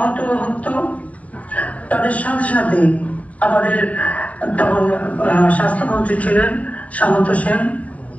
হতো, তাদের সাথে সাথে আমাদের তখন স্বাস্থ্যমন্ত্রী ছিলেন সামন্ত সেন,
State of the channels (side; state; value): right; late; 0.069 ms